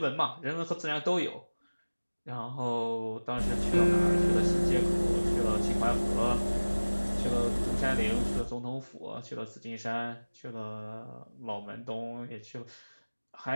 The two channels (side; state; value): both; inverted; correlation -1.00